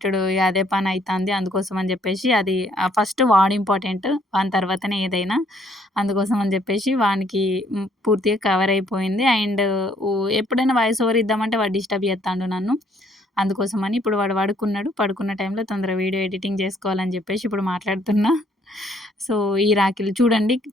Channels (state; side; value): normal; both; correlation 0.65